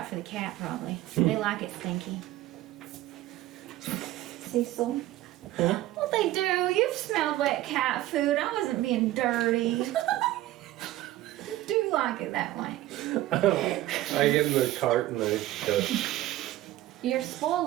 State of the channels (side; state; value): left; quieter; 15.4 dB